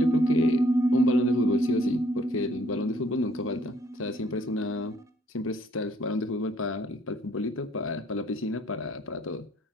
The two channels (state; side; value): normal; both; correlation 0.64